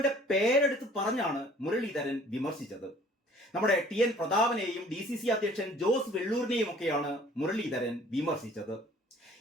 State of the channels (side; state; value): both; normal; correlation 0.53